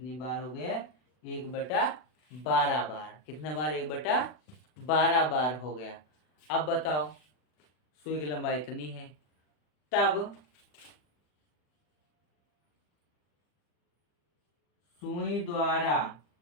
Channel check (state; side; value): late; right; 40 ms